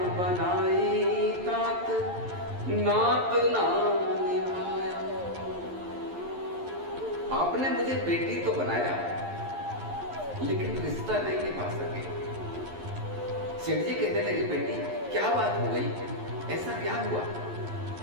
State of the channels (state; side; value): late; left; 11 ms